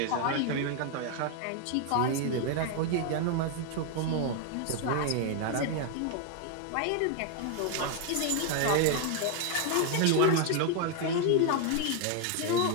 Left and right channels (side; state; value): both; different; correlation 0.00